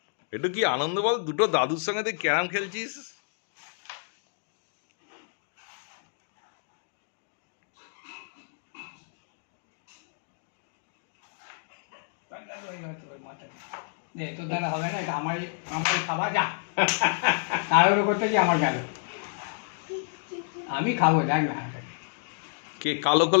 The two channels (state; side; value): silent; right; digital silence